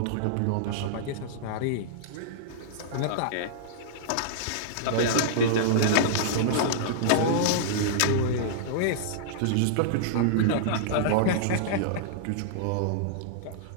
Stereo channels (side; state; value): both; different; correlation -0.02